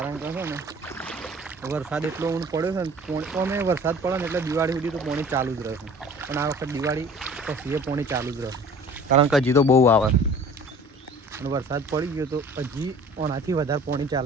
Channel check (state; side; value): normal; both; correlation 0.47